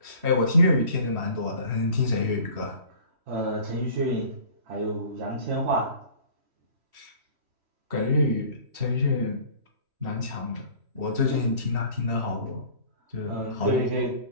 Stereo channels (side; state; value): left; late; 3.1 ms